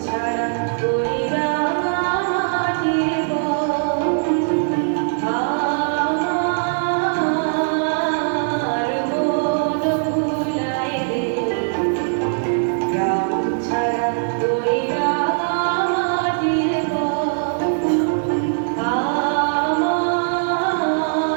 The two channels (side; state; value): left; silent; digital silence